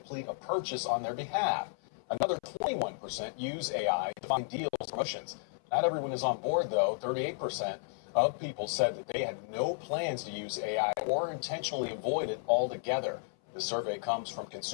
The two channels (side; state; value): right; silent; 56 dB below the other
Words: a purchase on their behalf. Another 21% use AI to find deals or promotions. Not everyone is on board, though. 38% of people said that they had no plans to use AI or intentionally avoid it altogether. The survey comes from